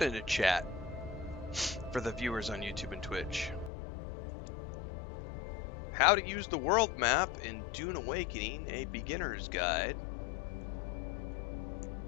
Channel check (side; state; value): right; drops out; at 3.7 s